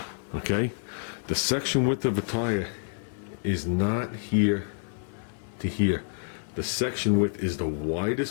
Okay, the section width of a tire is not here to here. The section width is the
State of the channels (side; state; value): right; silent; digital silence